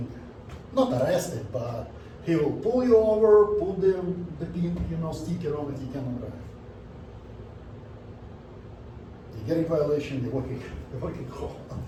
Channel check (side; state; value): both; identical; correlation 1.00